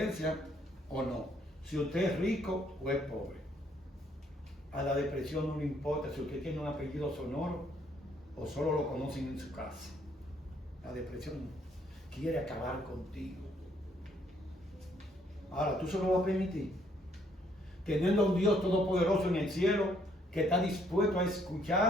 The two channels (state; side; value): normal; both; correlation 0.68